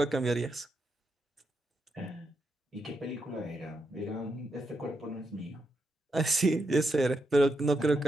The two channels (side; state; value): both; normal; correlation 0.83